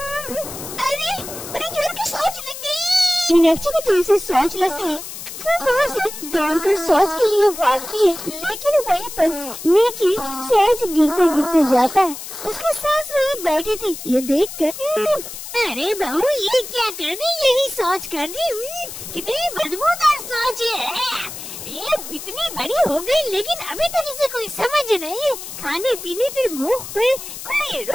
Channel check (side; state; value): left; noise; hiss, 10 dB below the sound